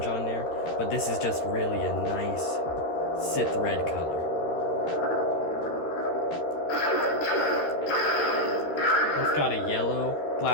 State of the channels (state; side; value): late; right; 13 ms